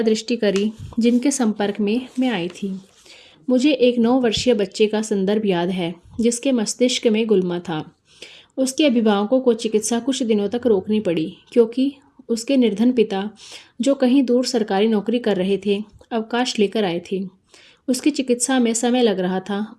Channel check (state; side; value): identical; both; correlation 1.00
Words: दृष्टि करी जिनके संपर्क में मैं आई थी। मुझे एक 9 वर्षीय बच्चे का संदर्भ याद है, जिसके मस्तिष्क में गुलमा था। उसके अभिभावकों को चिकित्सा कुछ दिनों तक रोकनी पड़ी, क्योंकि उसके निर्धन पिता, जो कहीं दूर सरकारी नौकरी कर रहे थे, अवकाश लेकर आए थे। उसकी चिकित्सा में समय लग रहा था